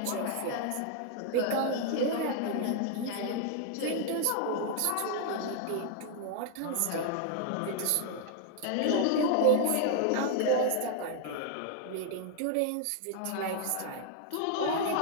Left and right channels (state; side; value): different; both; correlation 0.00